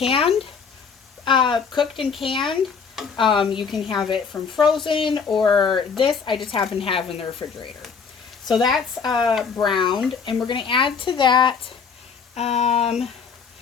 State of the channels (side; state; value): right; quieter; 5.9 dB